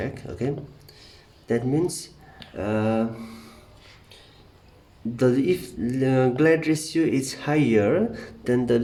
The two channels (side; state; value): both; identical; correlation 1.00